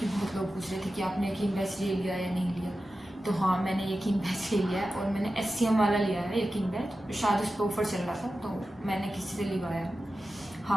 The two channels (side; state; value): both; normal; correlation 0.93